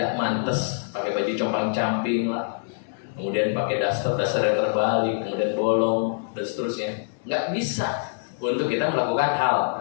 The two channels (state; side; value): silent; right; digital silence